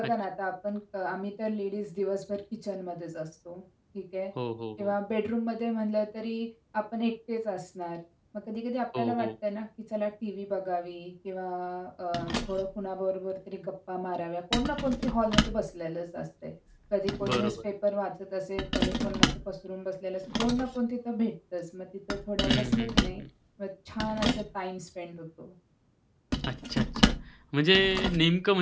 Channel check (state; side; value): identical; both; correlation 1.00